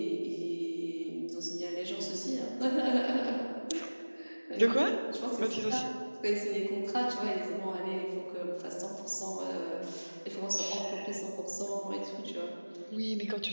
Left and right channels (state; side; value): inverted; both; correlation -1.00